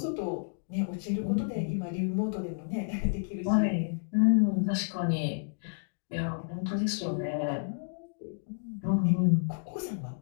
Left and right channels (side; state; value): right; silent; digital silence